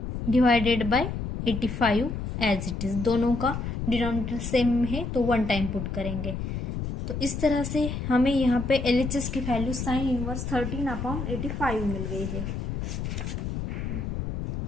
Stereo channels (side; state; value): left; noise; rumble, 4 dB below the sound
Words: divided by 85 as it is. दोनों का डिनोमिनेटर सेम है तो 1 टाइम पुट करेंगे। तो इस तरह से हमें यहाँ पे LHS की वैल्यू साइन इनवर्स 13/85 मिल गई है।